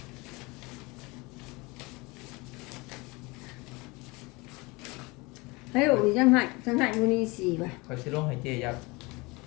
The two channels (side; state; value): right; quieter; 24.9 dB